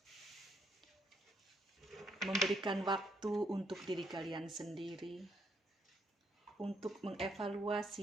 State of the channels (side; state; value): both; normal; correlation 0.73